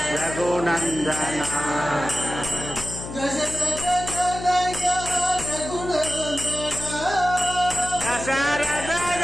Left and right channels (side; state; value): left; noise; hum, 9 dB below the sound